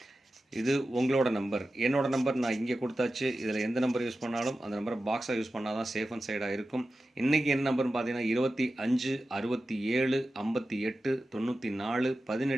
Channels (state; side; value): normal; both; correlation 0.93